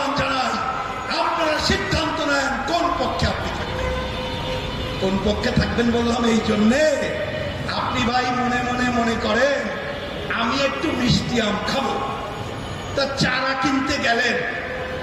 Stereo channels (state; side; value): identical; both; correlation 1.00